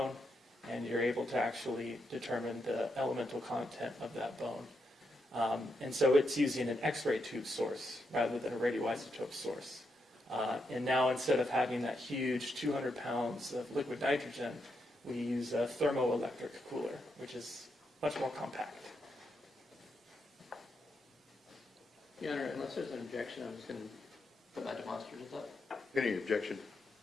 and you're able to actually determine the elemental content of that bone. And so it's using an X-ray tube source rather than a radioisotope source. And now instead of having that huge 200 pounds of liquid nitrogen, we use a thermoelectric cooler, which is much more compact. Your Honor, unless there's an objection, I'm just going to put my demonstrators up. Any objection?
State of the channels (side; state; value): both; normal; correlation 0.82